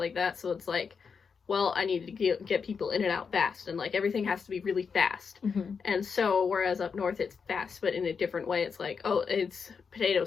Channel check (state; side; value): quieter; right; 5.8 dB